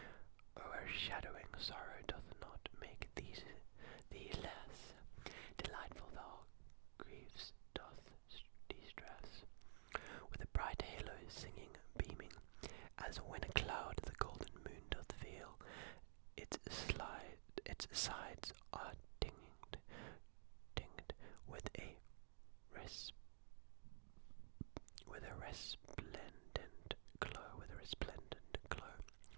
O'ershadowing sorrow doth not make thee less delightful, thou griefs doth distress. With a bright halo singing, beaming, as when a cloud the golden moon doth veil, its sides are tinged with a resplendent glow.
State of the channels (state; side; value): silent; left; digital silence